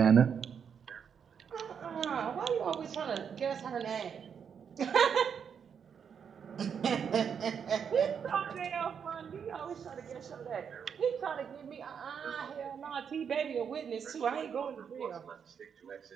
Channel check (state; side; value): quieter; left; 7.2 dB